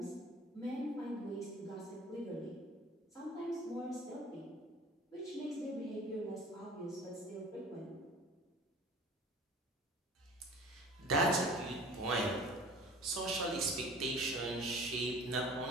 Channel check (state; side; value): normal; both; correlation 0.44